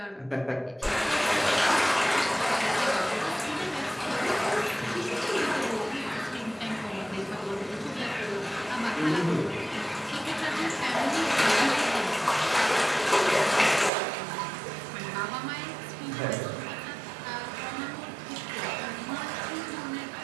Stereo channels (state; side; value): drops out; left; at 13.9 s